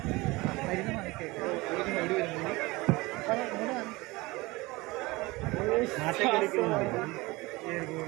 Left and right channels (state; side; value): quieter; left; 22.2 dB